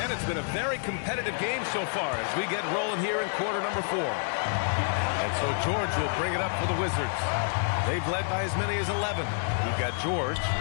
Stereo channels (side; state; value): right; silent; digital silence